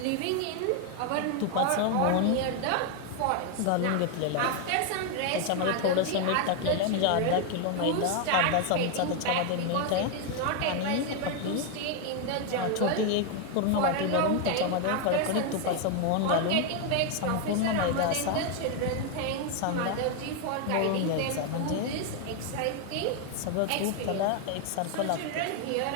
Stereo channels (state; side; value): different; both; correlation 0.01